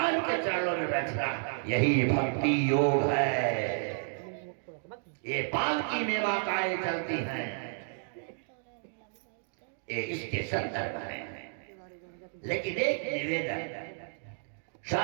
के चरणों में बैठना, यही भक्ति योग है। ये पालकी में माताएं चलती हैं, ये इसके संदर्भ है। लेकिन एक निवेदन,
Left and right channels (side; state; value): left; silent; digital silence